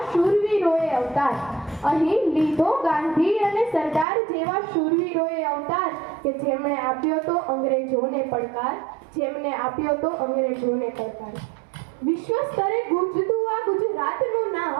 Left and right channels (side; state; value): left; drops out; at 4.0 s